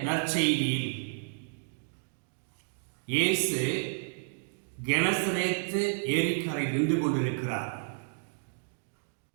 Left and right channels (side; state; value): left; silent; digital silence